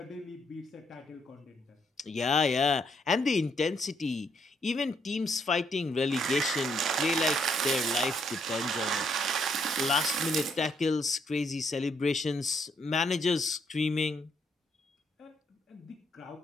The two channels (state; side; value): normal; both; correlation 0.73